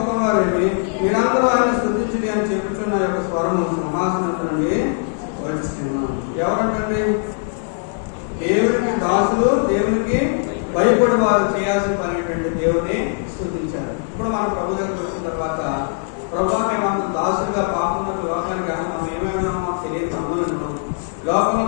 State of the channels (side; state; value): right; silent; 61 dB below the other